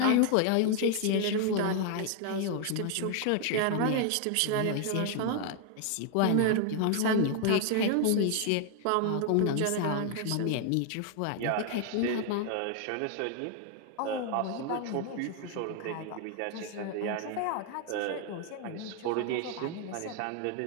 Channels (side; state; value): both; different; correlation 0.00